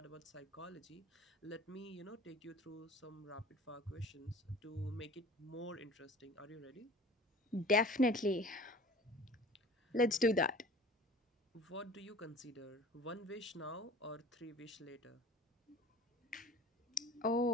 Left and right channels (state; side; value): normal; both; correlation 0.42